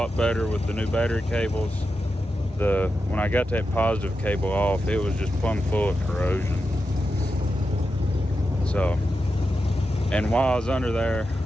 better with the new battery cables. When I got that positive cable off, it was just plumb full of corrosion. So, and while I was under there,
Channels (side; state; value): both; normal; correlation 0.89